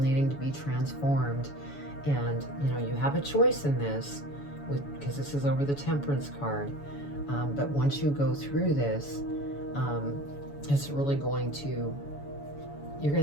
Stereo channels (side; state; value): right; late; 7.0 ms